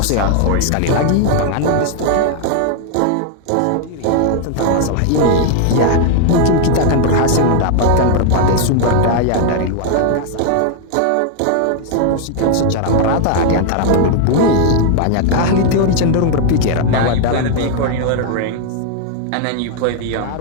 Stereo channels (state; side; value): different; both; correlation 0.00